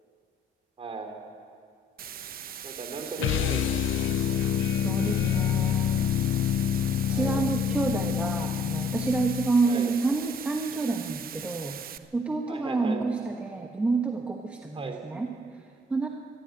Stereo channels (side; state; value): both; normal; correlation 0.60